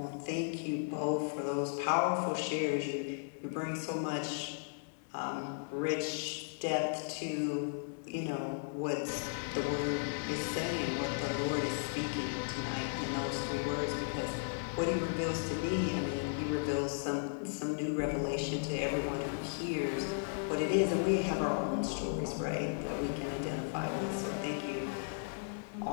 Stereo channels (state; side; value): silent; right; 54 dB below the other